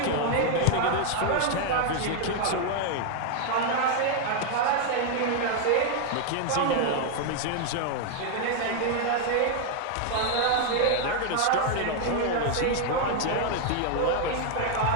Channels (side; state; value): both; different; correlation 0.00